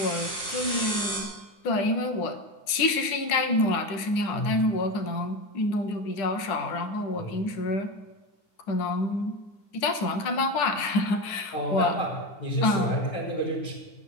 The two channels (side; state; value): right; late; 10 ms